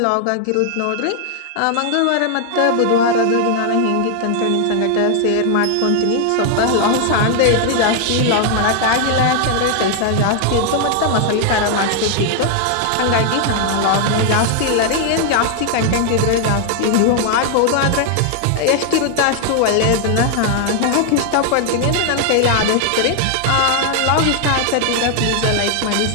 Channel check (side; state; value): both; different; correlation 0.00